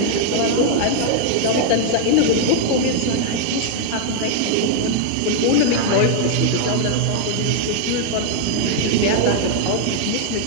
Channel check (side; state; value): both; different; correlation -0.01